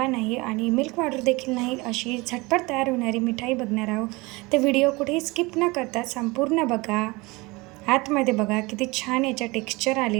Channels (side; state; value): left; quieter; 23.9 dB